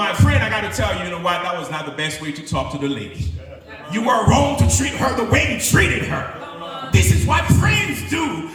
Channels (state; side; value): identical; both; correlation 1.00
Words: friend, I got to tell you, you know what, that was not the best way to talk to the lady. You were wrong to treat her the way you treated her. This is what friends do.